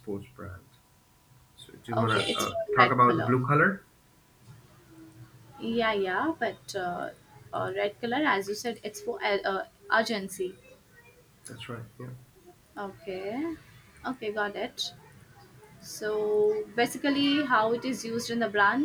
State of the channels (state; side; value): identical; both; correlation 1.00